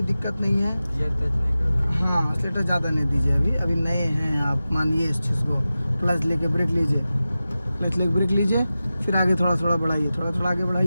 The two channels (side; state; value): both; inverted; correlation -0.95